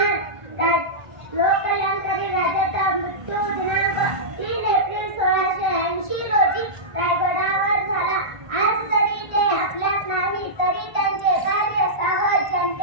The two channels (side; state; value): left; late; 1.5 ms